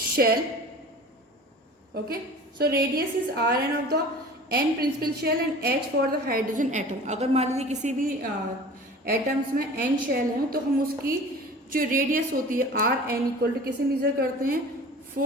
Okay, so radius is Rn of the n principal shell and H for the hydrogen atom. अगर मान लीजिए किसी भी atoms में n shell है तो हम उसकी जो रेडियस होती है Rn इक्वल टू किसे मेजर करते हैं,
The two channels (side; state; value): both; normal; correlation 0.41